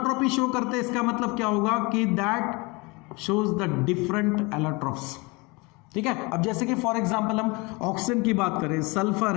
show करते हैं, इसका मतलब क्या होगा कि that shows the different allotropes, ठीक है। अब जैसे कि फॉर एग्जांपल हम ऑक्सीजन की बात करें, सल्फर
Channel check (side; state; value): right; quieter; 26.8 dB